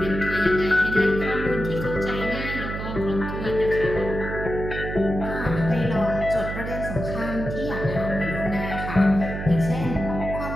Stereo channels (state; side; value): noise; right; hum, 6 dB below the sound